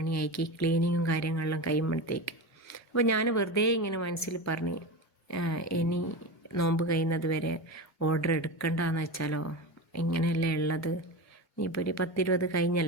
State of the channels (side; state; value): both; normal; correlation 0.23